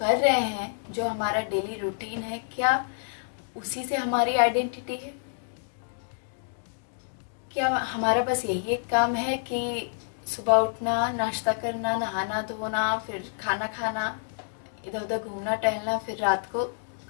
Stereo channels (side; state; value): right; silent; digital silence